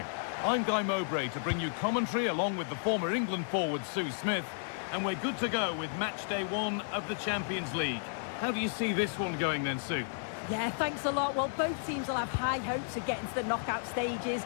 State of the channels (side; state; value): right; silent; digital silence